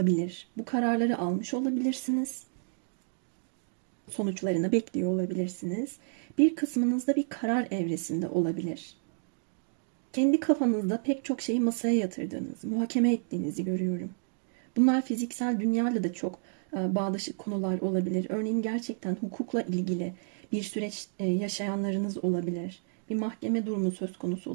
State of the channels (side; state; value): left; silent; digital silence